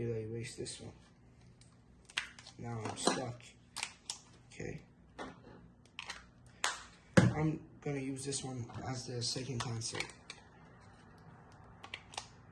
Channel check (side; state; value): both; identical; correlation 1.00